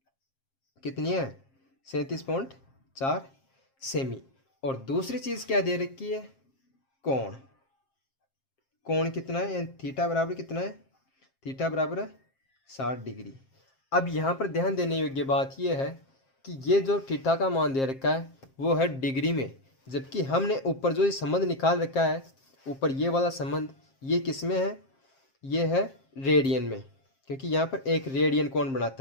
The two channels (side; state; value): right; late; 7.5 ms